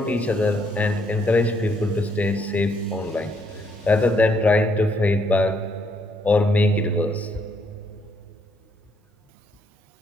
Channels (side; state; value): both; normal; correlation 0.72